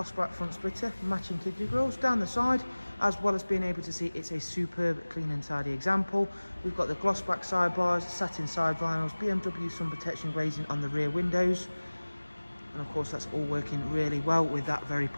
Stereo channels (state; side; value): inverted; both; correlation -1.00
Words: black front splitter, matching kidney grills down the side, as well as being able to see it's a superb clean and tidy example. We've got the gloss black sidebars, satin side vinyls, BMW sun protection glazing on the rear windows, and of course that's all working really well with that very